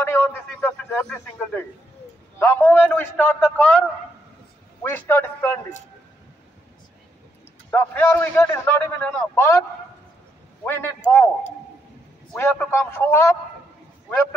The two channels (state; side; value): normal; both; correlation 0.77